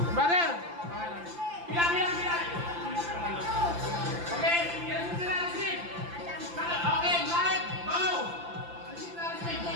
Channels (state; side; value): late; left; 5.8 ms